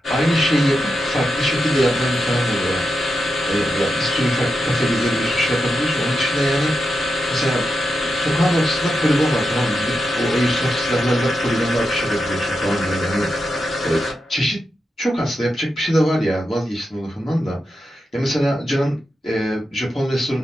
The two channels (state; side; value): normal; both; correlation 0.87